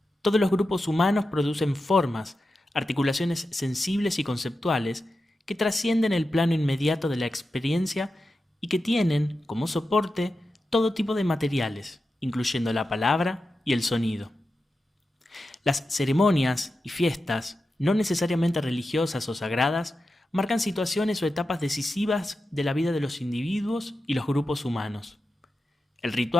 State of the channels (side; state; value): both; normal; correlation 0.91